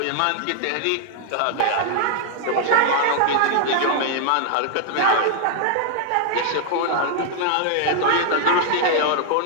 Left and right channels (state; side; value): different; both; correlation 0.00